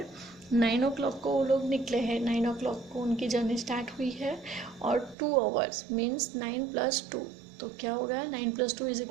9 o'clock को वो लोग निकले हैं, 9 o'clock को उनकी जर्नी स्टार्ट हुई है, और 2 hours मीन्स 9 + 2. तो क्या होगा? 9 + 2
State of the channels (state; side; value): drops out; left; at 5.2 s